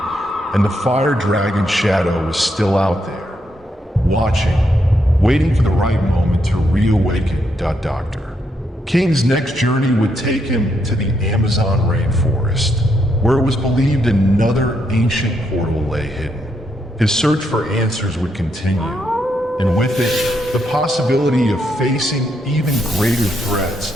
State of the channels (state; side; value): normal; both; correlation 0.78